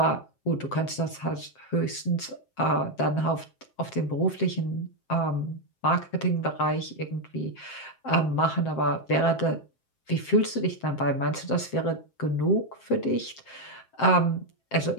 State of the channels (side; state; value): right; late; 7.6 ms